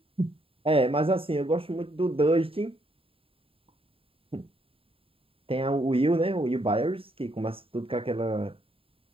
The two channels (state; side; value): late; left; 0.27 ms